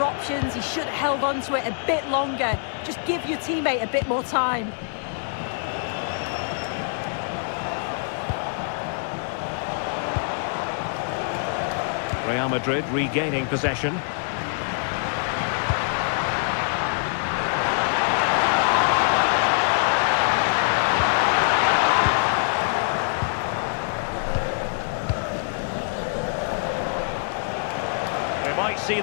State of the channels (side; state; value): right; silent; 62 dB below the other